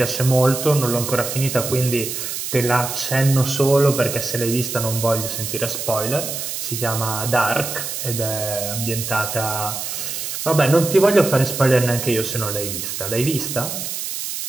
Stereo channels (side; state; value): right; noise; hiss, 5 dB below the sound